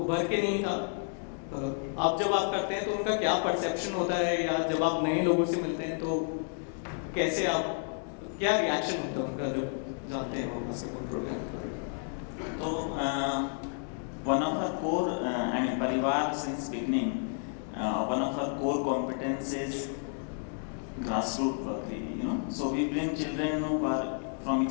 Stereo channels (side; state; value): right; silent; 57 dB below the other